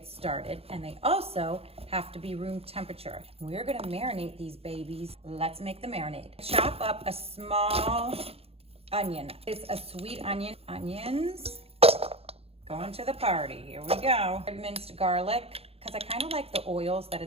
started. And they also have to be room temperature. We're gonna marinate these babies. Let's make the marinade. Chop up a small onion. It's a sweet onion. Onions, going to the party. Here we go. Minced garlic, because I kind of like the oils that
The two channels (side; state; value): left; late; 0.29 ms